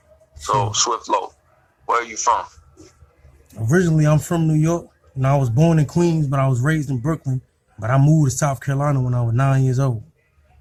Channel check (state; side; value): identical; both; correlation 1.00